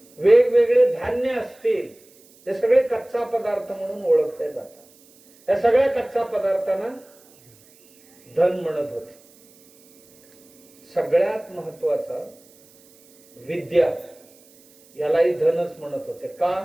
वेगवेगळे धान्य असतील, हे सगळे कच्चा पदार्थ म्हणून ओळखले जातात. या सगळ्या कच्चा पदार्थांना धन म्हणत होते. सगळ्यात महत्वाचा विद्या, यालाही धनच म्हणत होते.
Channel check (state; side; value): noise; right; hiss, 28 dB below the sound